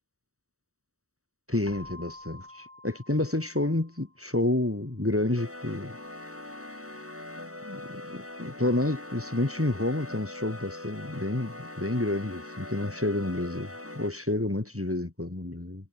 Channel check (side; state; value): left; late; 0.65 ms